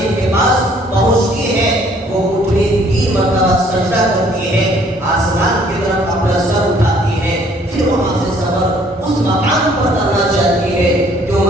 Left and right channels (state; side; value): normal; both; correlation 0.60